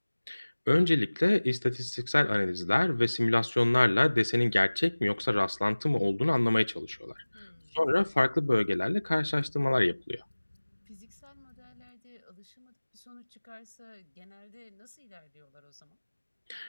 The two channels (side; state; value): both; inverted; correlation -1.00